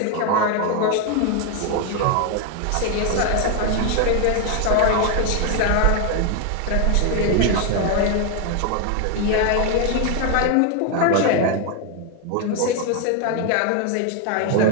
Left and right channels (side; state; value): both; different; correlation 0.01